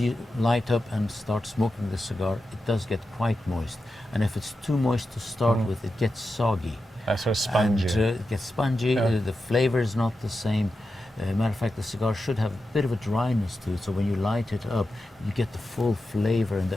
light up and start smoking the cigar, it does get quite moist. And if it's too moist to start with, it gets soggy. That's sort of spongy. And it gets spongy. The flavor is not the same. Matter of fact, the cigar should have a bit of a dryness to it. So when you light it up, you get the full flavor and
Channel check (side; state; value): both; normal; correlation 0.90